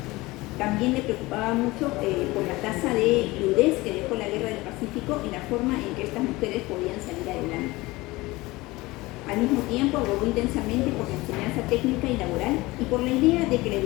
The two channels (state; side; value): quieter; right; 20.9 dB